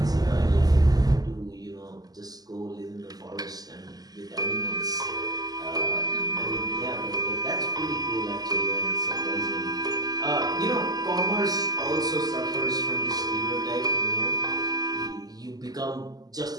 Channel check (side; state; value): left; late; 0.18 ms